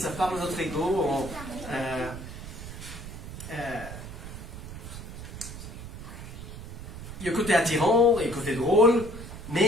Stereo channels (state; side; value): noise; right; rumble, 11 dB below the sound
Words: parle de notre ego. Il y a un côté attirant et un côté drôle,